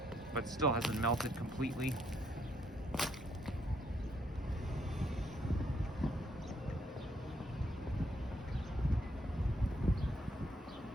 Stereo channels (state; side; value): normal; both; correlation 0.72